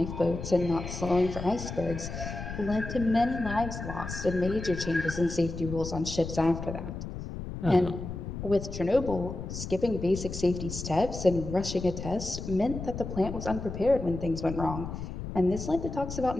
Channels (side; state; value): left; noise; rumble, 7 dB below the sound